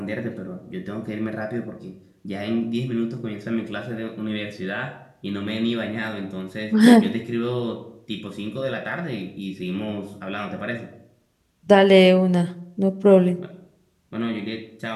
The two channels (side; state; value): both; identical; correlation 1.00